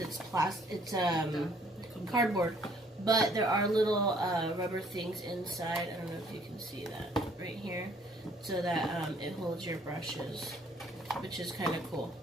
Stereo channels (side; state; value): both; normal; correlation 0.61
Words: cardboard, but there are little rubber things inside. I don't know if you can see that right here, so that it holds your brushes, which is kind of cool.